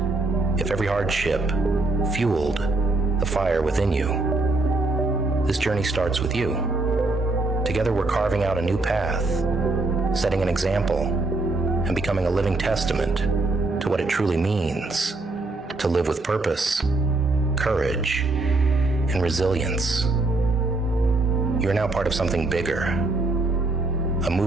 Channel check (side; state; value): left; quieter; 3.2 dB